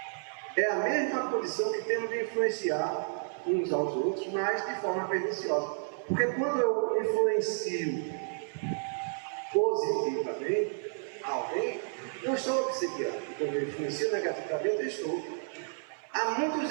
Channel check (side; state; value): left; silent; 57 dB below the other